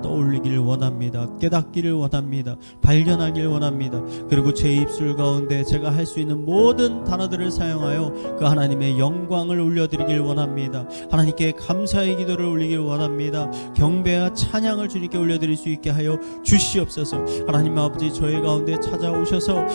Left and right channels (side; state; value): both; inverted; correlation -1.00